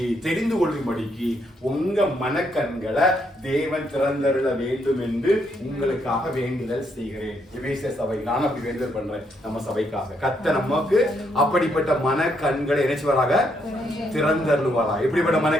தெரிந்து கொள்ளும்படிக்கு உங்க மனக்கண்களை தேவன் திறந்தருள வேண்டும் என்று உங்களுக்காக வேண்டுதல் செய்கிறேன். எபேசிய சபை, நான் அப்படி வேண்டுதல் பண்றேன் நம்ம சபைக்காக. கர்த்தர் நமக்கு அப்படிப்பட்ட மனக்கண்களை நினைச்சுவராக திறந்தருளுவாரா. எப்படிப்பட்ட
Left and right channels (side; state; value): both; normal; correlation 0.75